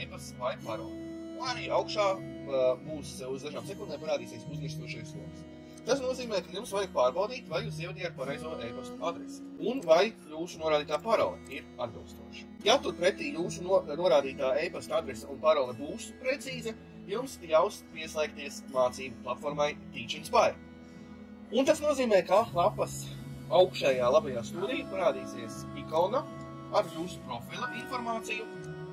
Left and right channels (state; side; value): identical; both; correlation 1.00